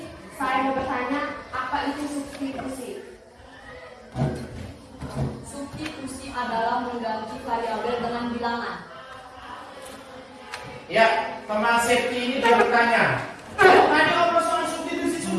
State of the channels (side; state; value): both; identical; correlation 1.00